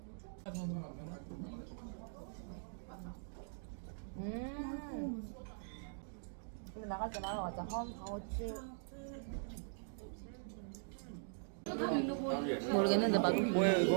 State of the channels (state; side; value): silent; left; digital silence